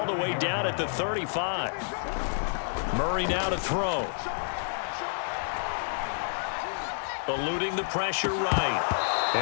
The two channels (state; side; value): silent; right; digital silence